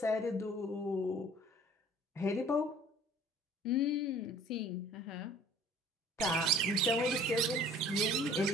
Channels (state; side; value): normal; both; correlation 0.51